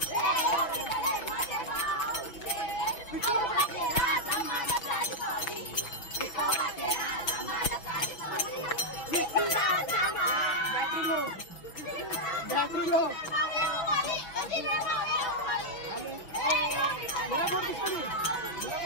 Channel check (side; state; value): right; late; 6.0 ms